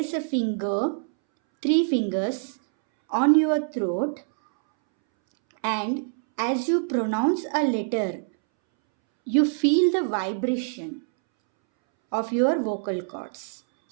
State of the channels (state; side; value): silent; left; 62 dB below the other